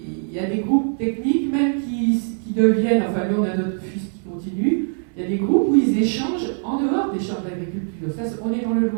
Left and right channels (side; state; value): left; silent; digital silence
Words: y a des groupes techniques même qui deviennent, enfin nous on a notre fils qui continue, il y a des groupes où ils échangent en dehors des chambres d'agriculture. Ça, on est dans le